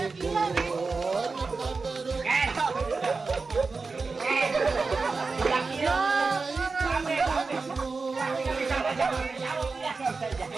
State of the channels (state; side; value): quieter; left; 4.2 dB